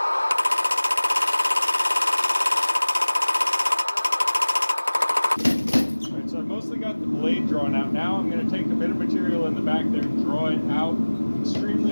So I've mostly got the blade drawn out. Now I'm going to take a bit of material in the back there and draw it out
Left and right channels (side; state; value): both; inverted; correlation -1.00